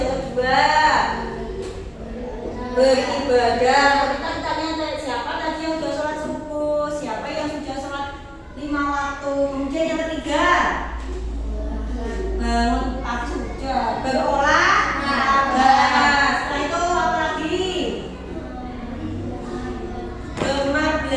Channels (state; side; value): identical; both; correlation 1.00